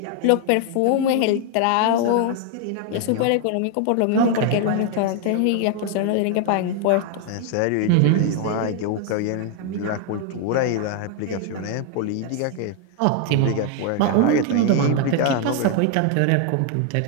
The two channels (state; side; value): different; both; correlation 0.00